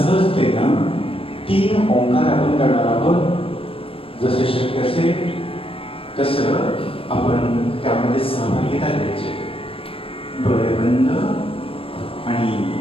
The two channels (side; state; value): right; late; 0.27 ms